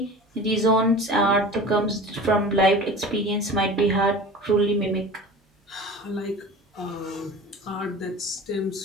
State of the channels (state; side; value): normal; both; correlation 0.37